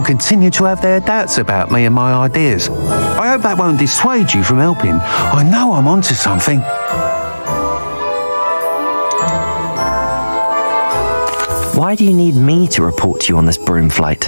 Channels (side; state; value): both; inverted; correlation -1.00